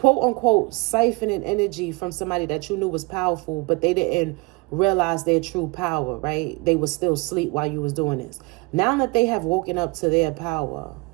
unquote, siphoning energy from somebody that you knew was powerful, but they didn't realize their true power, right? They was still asleep while you was doing this. Now that they have woken up to their power,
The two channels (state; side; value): quieter; left; 25.8 dB